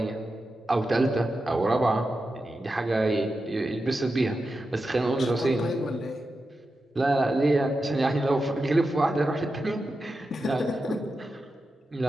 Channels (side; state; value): both; normal; correlation 0.90